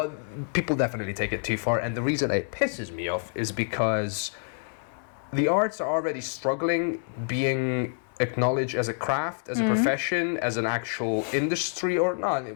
people definitely take it too far. And the reason it pisses me off is because the arts are already struggling being acknowledged as a craft, as a profession, as an actual industry, or not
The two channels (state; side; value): silent; right; digital silence